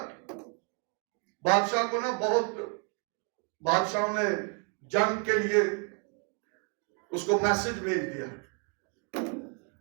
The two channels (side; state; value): left; quieter; 37.0 dB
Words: بادشاہ کو نا بہت بادشاہوں نے جنگ کے لیے اس کو میسج بھیج دیا،